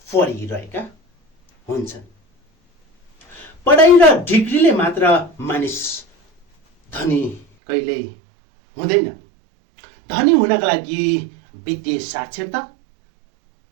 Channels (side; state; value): left; drops out; at 7.5 s